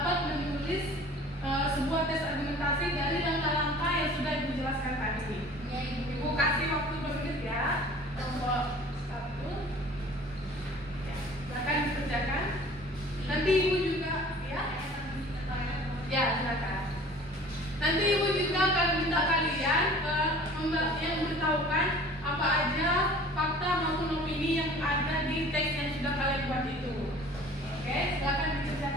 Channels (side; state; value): both; normal; correlation 0.47